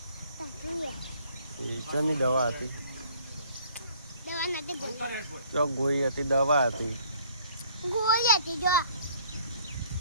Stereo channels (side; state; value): both; inverted; correlation -0.59